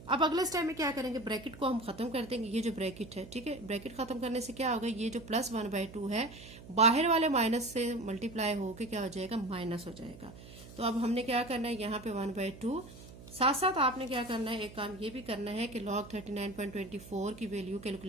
अब अगले स्टेप में क्या करेंगे, ब्रैकेट को हम खत्म कर देंगे। ये जो ब्रैकेट है, ठीक है, ब्रैकेट खत्म करने से क्या होगा, ये जो प्लस 1/2 है बाहर वाले माइनस से मल्टीप्लाई होके क्या हो जाएगा, माइनस हो जाएगा। तो अब हमने क्या करना है, यहाँ पे 1/2, साथ साथ आपने क्या करना है, एक काम ये भी करना है कि log 39.24 की वैल्यू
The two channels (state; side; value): noise; right; hum, 17 dB below the sound